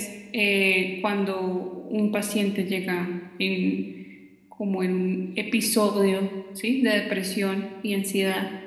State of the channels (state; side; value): identical; both; correlation 1.00